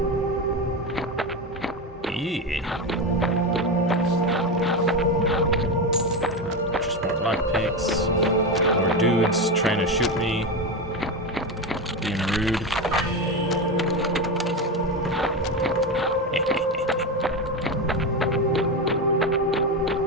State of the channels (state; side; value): normal; both; correlation 0.16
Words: Just more lockpicks. More dudes trying to shoot me. Being rude.